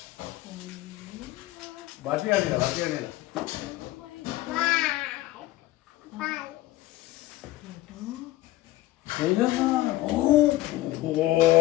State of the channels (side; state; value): right; quieter; 16.7 dB